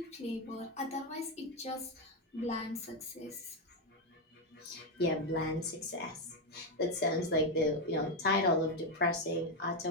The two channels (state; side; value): normal; both; correlation 0.06